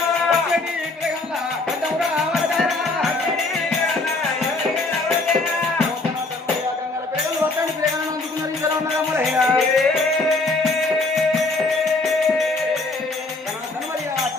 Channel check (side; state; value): right; quieter; 3.2 dB